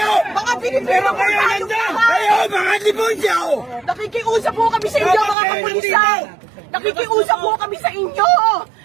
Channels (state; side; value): drops out; left; at 5.4 s